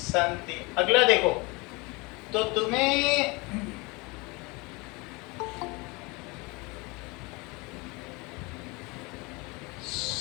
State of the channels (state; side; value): quieter; right; 26.3 dB